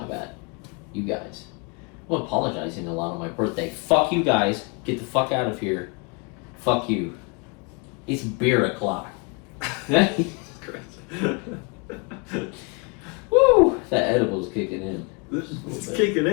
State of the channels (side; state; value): right; quieter; 32.1 dB